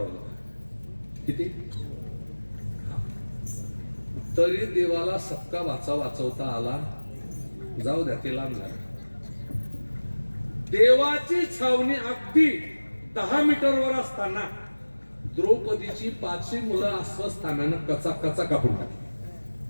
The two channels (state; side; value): inverted; both; correlation -1.00